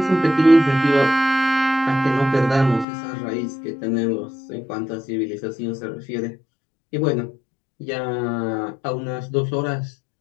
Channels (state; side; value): drops out; right; at 2.9 s